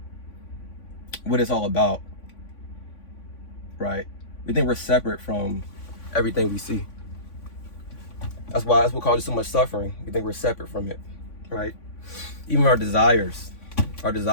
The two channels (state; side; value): late; right; 3.5 ms